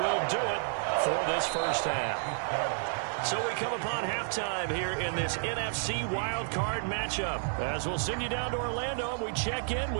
do it for this first half. So we come upon halftime here in this NFC wildcard matchup. As we'll send you down to Orlando, and we check in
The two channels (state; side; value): silent; left; 55 dB below the other